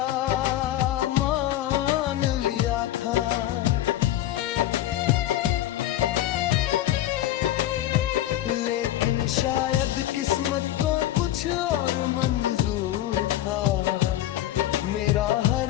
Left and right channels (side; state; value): right; quieter; 13.3 dB